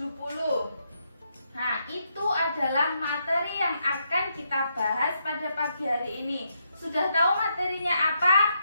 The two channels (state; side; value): inverted; both; correlation -0.79